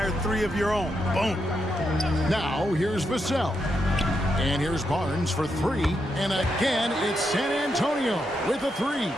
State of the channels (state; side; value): normal; both; correlation 0.82